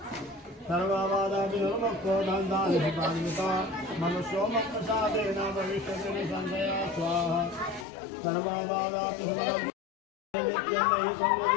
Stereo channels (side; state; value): right; drops out; at 7.9 s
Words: सर्वबाधा विनुर्मुक्तो धन्धानिपान्विता मनुष्यो मत्प्रसादेन भविष्यति संशया स्वाहा सर्वबाधा विनुर्मुक्तो नित्यमयि